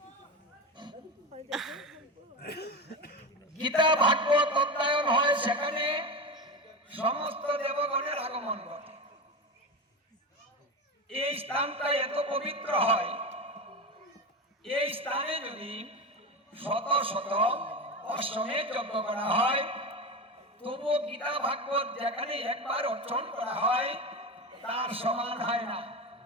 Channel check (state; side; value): normal; both; correlation 0.21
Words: গীতা ভাগবত অধ্যয়ন হয়, সেখানে সমস্ত দেবগণের আগমন ঘটে। এই স্থানটা এত পবিত্র হয়, এই স্থানে যদি শত শত অশ্বমেধ যজ্ঞ করা হয়, তবুও গীতা ভাগবত যেখানে একবার অর্চন করা হয় তার সমান হয় না।